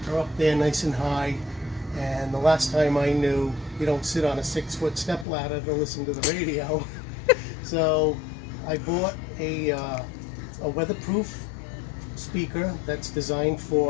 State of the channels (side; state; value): right; drops out; at 5.2 s